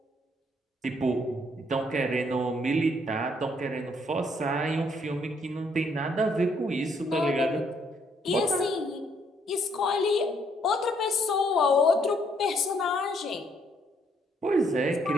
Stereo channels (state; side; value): normal; both; correlation 0.69